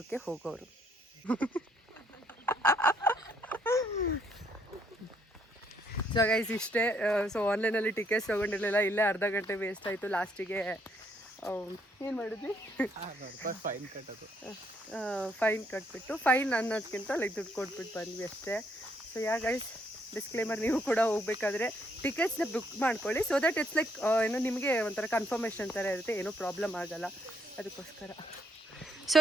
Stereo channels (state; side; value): normal; both; correlation 0.71